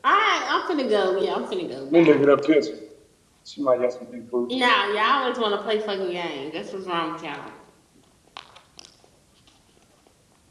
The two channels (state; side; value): identical; both; correlation 1.00